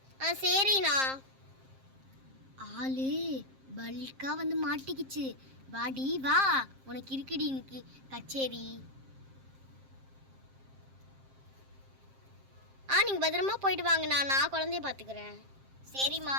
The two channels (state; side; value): late; left; 7.5 ms